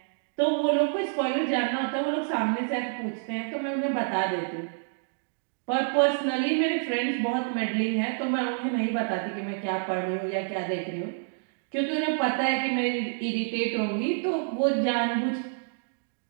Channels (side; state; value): left; silent; digital silence